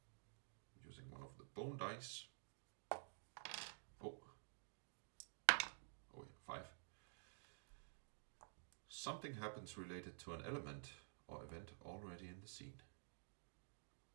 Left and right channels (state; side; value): silent; left; digital silence